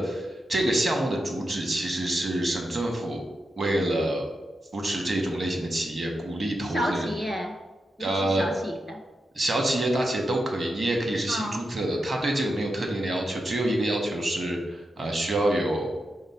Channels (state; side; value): normal; both; correlation 0.87